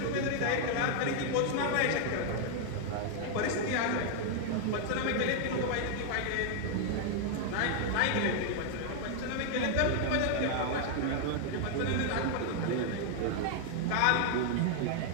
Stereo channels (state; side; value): different; both; correlation 0.00